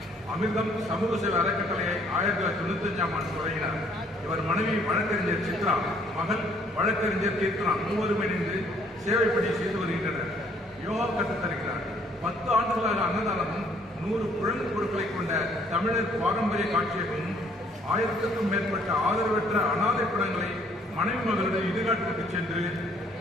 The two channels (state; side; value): normal; both; correlation 0.63